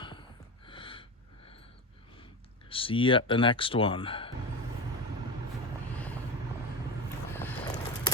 See you at the next one.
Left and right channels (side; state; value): both; normal; correlation 0.22